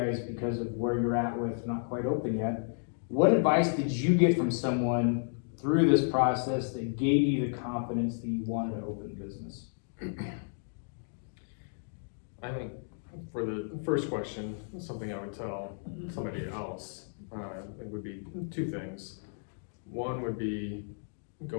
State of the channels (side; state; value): right; silent; digital silence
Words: because of where you're at with not quite open yet. What advice did you get from someone through this process that gave you the confidence that you wanted to open a business? I think for the first question, something I would tell somebody else, it would be two things. One would be